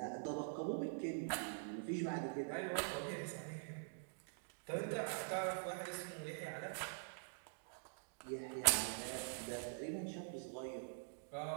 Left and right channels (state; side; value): silent; left; digital silence